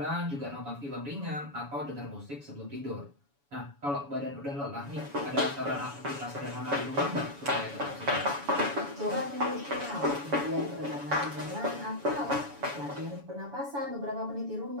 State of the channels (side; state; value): left; late; 7.1 ms